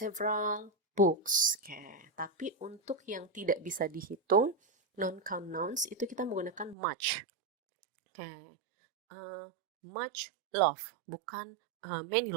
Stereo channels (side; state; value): left; drops out; at 6.8 s